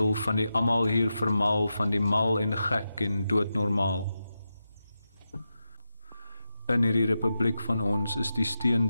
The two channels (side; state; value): both; inverted; correlation -0.89